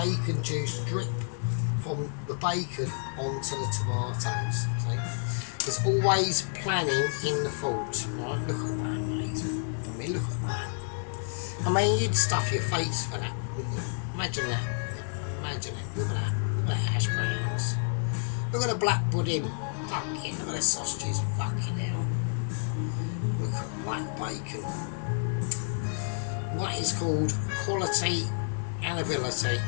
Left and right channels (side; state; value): right; silent; 58 dB below the other